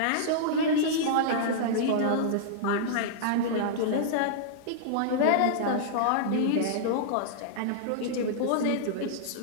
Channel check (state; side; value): different; both; correlation -0.02